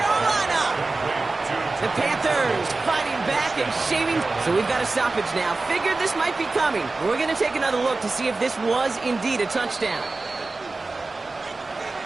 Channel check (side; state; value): left; quieter; 3.5 dB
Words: The Panthers fighting back and shaving. So we've got a stoppage now. Figured this might be coming. We're going to take another look to see if this was indeed a touchdown.